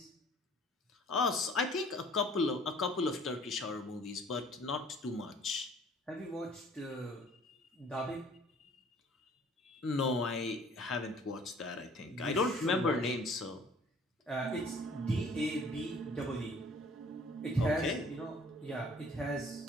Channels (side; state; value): both; normal; correlation 0.53